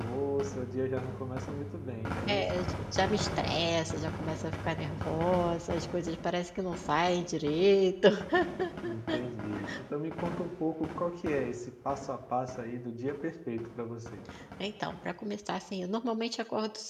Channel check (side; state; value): both; identical; correlation 1.00